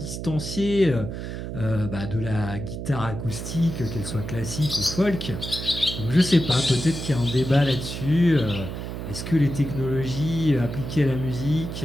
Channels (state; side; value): noise; right; hum, 6 dB below the sound